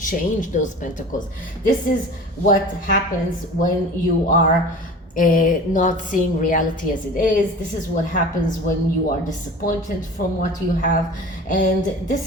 those pentacles. This is what happens when you are not seeing reality as it is. This is what happens when you are disappointed from what you have, and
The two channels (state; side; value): normal; both; correlation 0.38